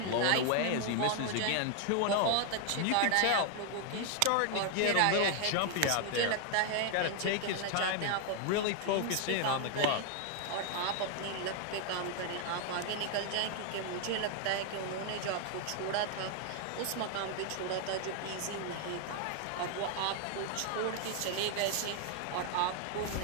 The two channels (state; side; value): different; both; correlation 0.00